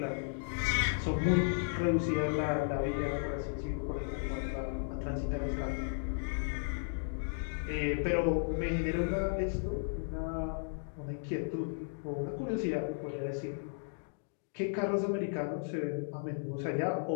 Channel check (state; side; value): silent; right; digital silence